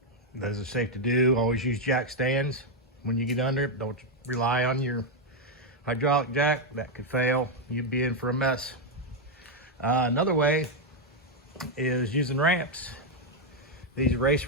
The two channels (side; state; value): both; normal; correlation 0.01